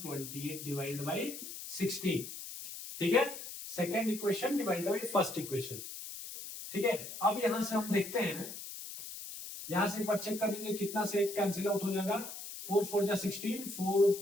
divided by 16। ठीक है, second equation divided by first equation. ठीक है, अब यहां से हम देखते हैं, यहां से एक बार चेक कर लीजिए कितना से एक कैंसिल आउट हो जाएगा, 4 4 जा 16, 4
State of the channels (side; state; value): left; noise; hiss, 10 dB below the sound